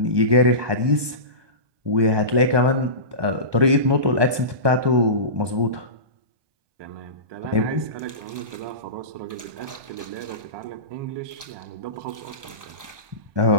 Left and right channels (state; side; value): late; left; 1.2 ms